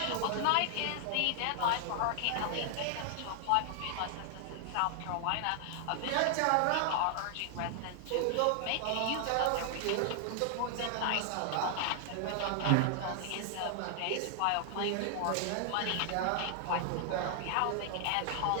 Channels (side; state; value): both; different; correlation 0.00